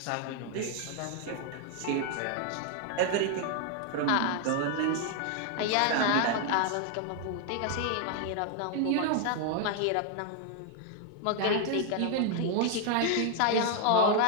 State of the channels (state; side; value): different; both; correlation 0.00